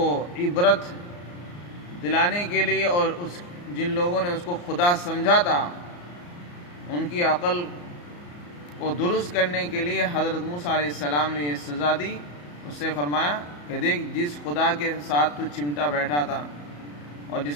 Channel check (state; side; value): late; right; 34 ms